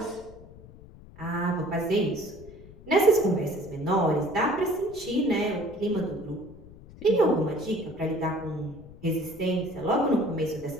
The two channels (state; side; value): noise; left; rumble, 19 dB below the sound